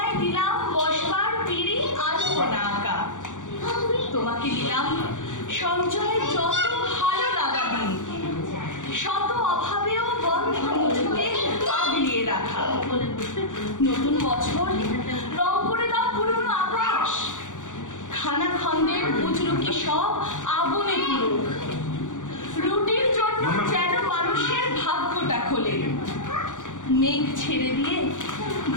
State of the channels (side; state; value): right; late; 0.86 ms